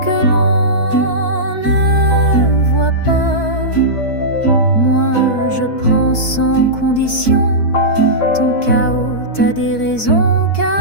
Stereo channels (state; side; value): late; right; 4.6 ms